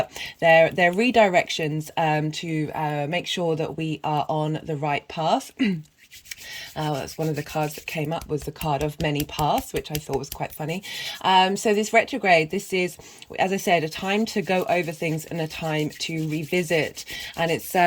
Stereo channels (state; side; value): identical; both; correlation 1.00